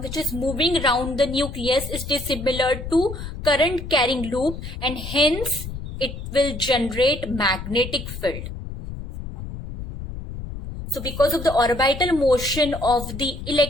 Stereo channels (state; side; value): noise; left; rumble, 9 dB below the sound